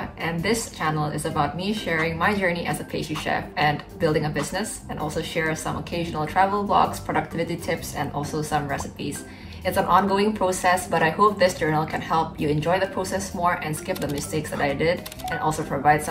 And this channel is about me sharing my journey as a pastry chef and building a business, and also share some occasional travel vlogs, productivity tips, and also some recipes. It's an ongoing process, but I hope this journal can help you enjoy the process more and skip the mistakes that I did, and also provide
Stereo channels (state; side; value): identical; both; correlation 1.00